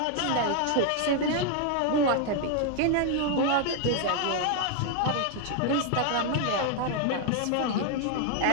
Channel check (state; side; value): different; both; correlation 0.00